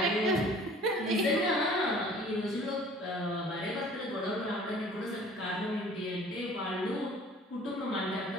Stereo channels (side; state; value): both; normal; correlation 0.50